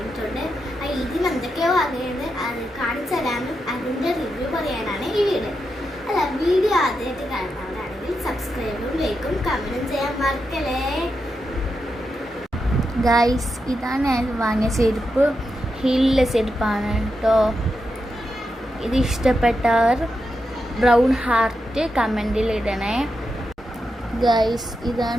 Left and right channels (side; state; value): both; normal; correlation 0.86